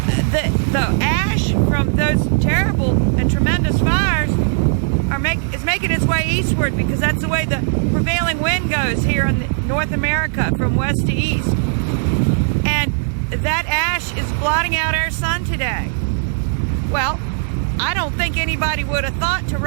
The ash from those terrible and tremendous fires is making its way eastward, because that's the way the prevailing wind goes here in North America from west to east. And that ash is blotting out our sun today. Well, I don't think anybody would have thought to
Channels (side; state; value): left; silent; digital silence